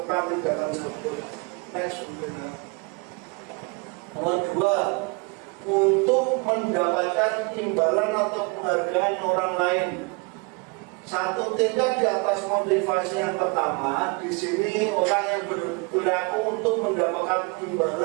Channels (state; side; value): quieter; left; 30.4 dB